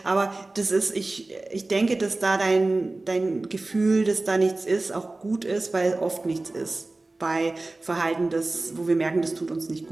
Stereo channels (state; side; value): quieter; left; 3.1 dB